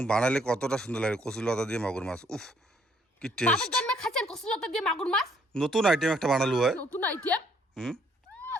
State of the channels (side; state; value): both; normal; correlation 0.66